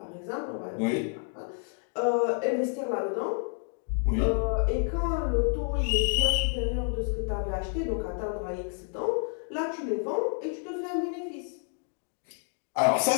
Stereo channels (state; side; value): silent; right; 58 dB below the other